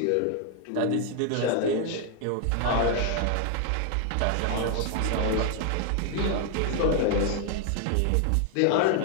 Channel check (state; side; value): different; both; correlation 0.00